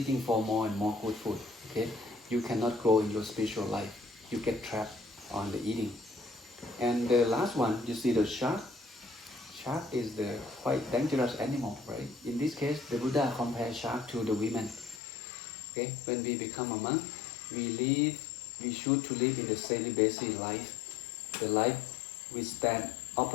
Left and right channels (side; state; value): right; drops out; at 15.0 s